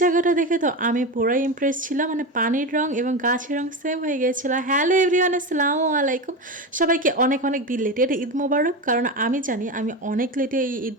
জায়গাটা দেখে তো আমি পুরাই ইমপ্রেস ছিলাম। মানে পানির রং এবং গাছের রং সেম হয়ে গিয়েছিল। হ্যালো এভরিওয়ান, আসসালামু আলাইকুম। সবাইকে অনেক অনেক বিলেটেড ঈদ মোবারক। কারণ আমি জানি আমি অনেক লেটে এই ঈদ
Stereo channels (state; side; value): normal; both; correlation 0.20